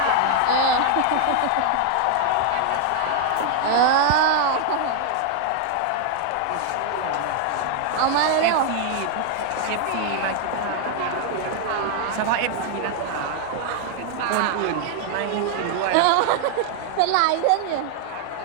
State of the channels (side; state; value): both; different; correlation 0.00